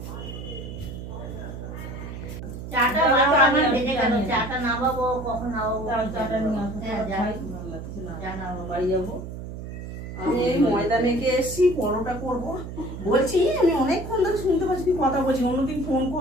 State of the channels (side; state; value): right; noise; hum, 9 dB below the sound